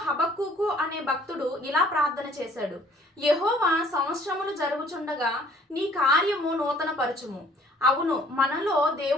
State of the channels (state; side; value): normal; both; correlation 0.57